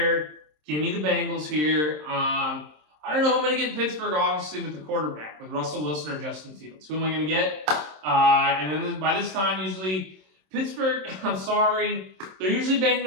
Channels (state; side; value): late; left; 27 ms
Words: Give me the Bengals here. I don't know who I'm going to get in Pittsburgh, obviously, with the quarterback, with Russell Wilson or Justin Fields. Who am I going to get? And then by this time, usually, Pittsburgh, I'm sorry, they're usually banged